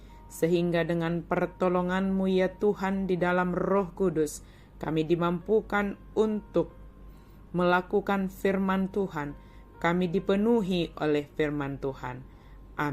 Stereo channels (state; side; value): identical; both; correlation 1.00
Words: sehingga dengan pertolongan-Mu ya Tuhan di dalam Roh Kudus, kami dimampukan untuk melakukan firman Tuhan. Kami dipenuhi oleh firman Tuhan.